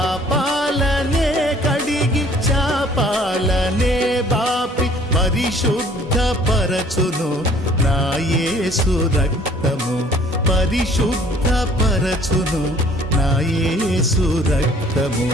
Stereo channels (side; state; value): both; normal; correlation 0.56